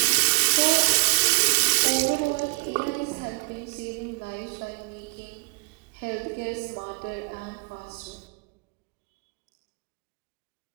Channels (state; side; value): quieter; left; 33.7 dB